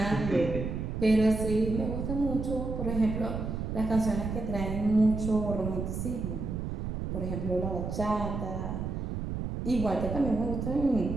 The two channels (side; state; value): right; noise; rumble, 4 dB below the sound